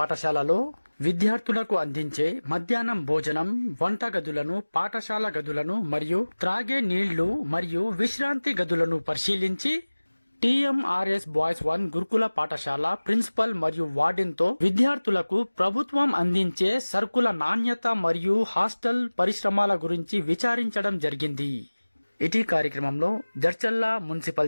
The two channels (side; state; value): both; inverted; correlation -1.00